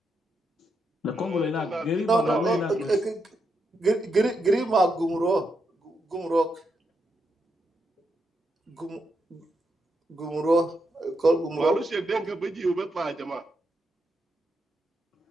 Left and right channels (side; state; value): both; normal; correlation 0.82